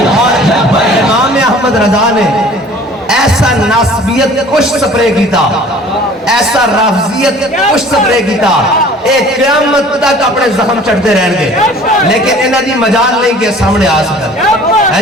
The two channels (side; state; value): both; normal; correlation 0.49